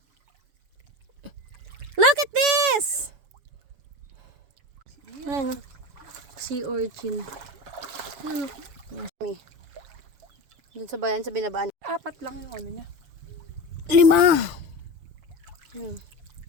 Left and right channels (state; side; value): late; left; 7.1 ms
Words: Look at this! Ano? Sea urchin. Ano? Doon sa bayan, sa binabaan. 4 lang yung ano niya. 5.